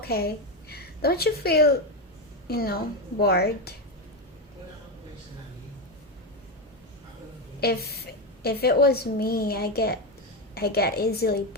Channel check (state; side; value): normal; both; correlation 0.11